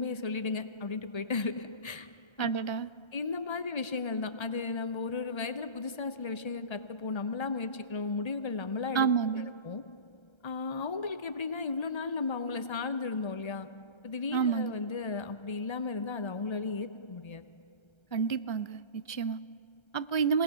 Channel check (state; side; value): late; right; 1.3 ms